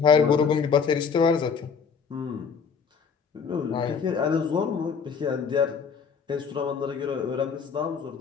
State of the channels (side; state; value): right; quieter; 6.0 dB